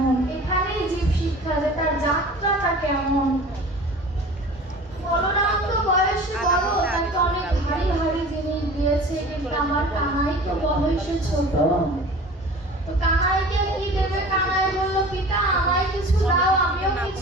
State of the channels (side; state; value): both; normal; correlation 0.41